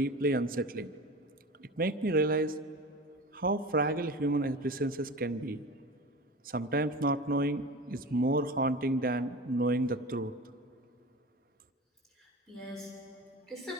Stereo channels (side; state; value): both; normal; correlation 0.32